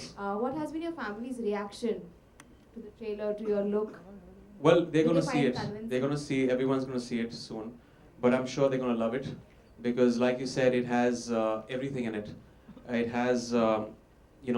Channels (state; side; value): identical; both; correlation 1.00